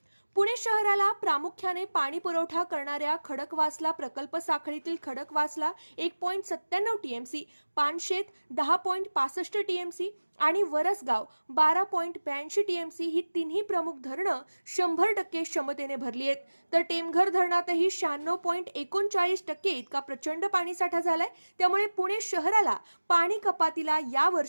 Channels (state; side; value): inverted; both; correlation -1.00